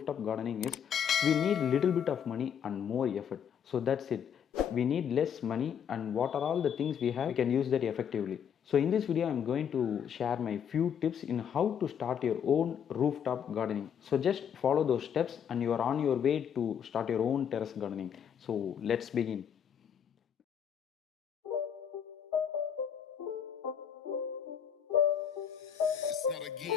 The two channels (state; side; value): quieter; right; 8.2 dB